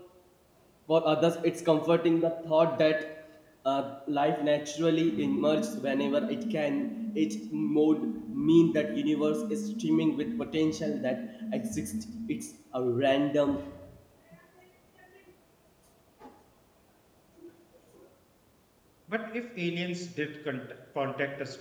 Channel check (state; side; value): identical; both; correlation 1.00